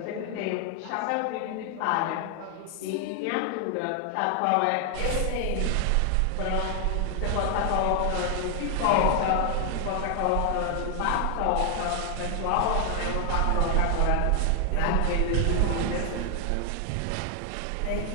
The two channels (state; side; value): different; both; correlation 0.00